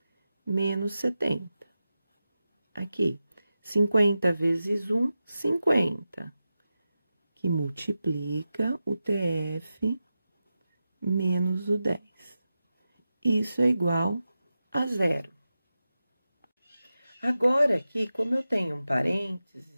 menos 70. Aqui, 50 vezes 1, 50. Que multiplica o TF menos o 10. Isso é igual a 0. Agora, aqui, como eu tenho um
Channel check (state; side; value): inverted; both; correlation -0.92